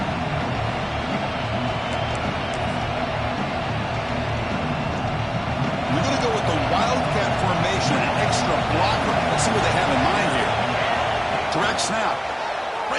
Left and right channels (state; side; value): identical; both; correlation 1.00